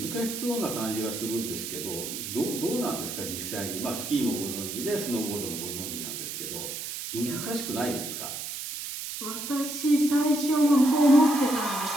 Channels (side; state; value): right; noise; hiss, 6 dB below the sound